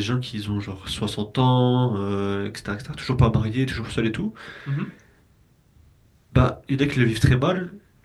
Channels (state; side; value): identical; both; correlation 1.00